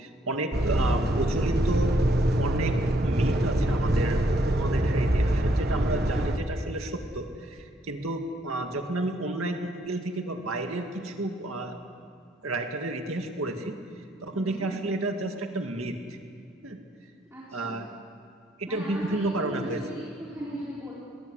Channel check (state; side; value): normal; both; correlation 0.68